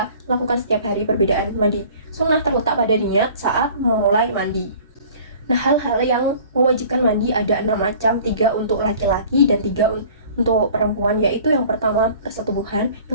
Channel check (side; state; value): both; inverted; correlation -0.48